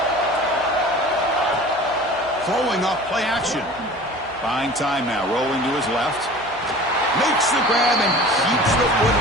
Throwing off play action. Buying time now. Rolling to his left. Makes the grab and keeps the foot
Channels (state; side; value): noise; left; hum, 22 dB below the sound